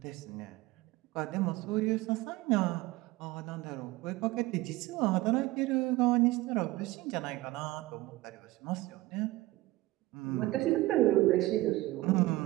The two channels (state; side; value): quieter; left; 18.5 dB